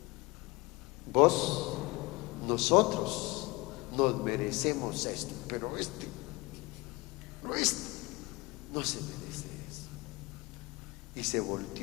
Nosotros nos merecemos esto, pero este no se merece eso. Y se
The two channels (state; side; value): quieter; right; 24.0 dB